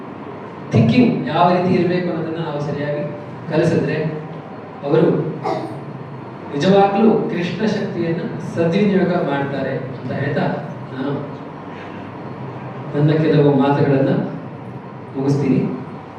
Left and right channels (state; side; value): identical; both; correlation 1.00